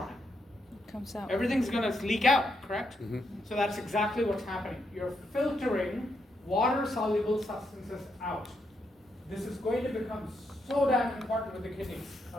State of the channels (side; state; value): both; normal; correlation 0.80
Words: it? comes out. Everything's going to leak out, correct? So that's exactly what's happening. You're filtering water-soluble substances out. This is going to become so damn important with the kidneys,